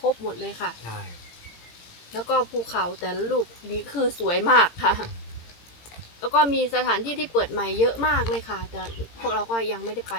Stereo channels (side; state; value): right; late; 18 ms